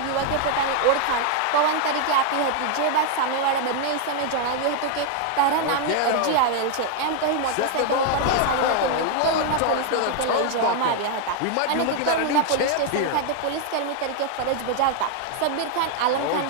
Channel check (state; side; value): different; both; correlation 0.00